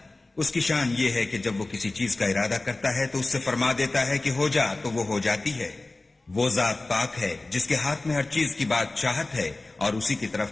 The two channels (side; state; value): right; quieter; 3.1 dB